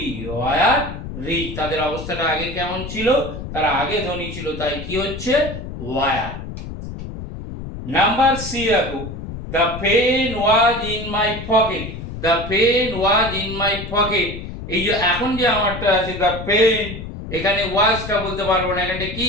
ওয়ার রিচ, তাদের অবস্থাটা আগে কেমন ছিল, তারা আগে ধনী ছিল, তাই কি হচ্ছে ওয়ার। নাম্বার সি দেখো, the pen was in my pocket. The pen was in my pocket, এই যে এখন যে আমারটা আছে দ্য পেন, এখানে ওয়াজটা বলতে পারবো না, এখানে কি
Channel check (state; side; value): noise; left; rumble, 9 dB below the sound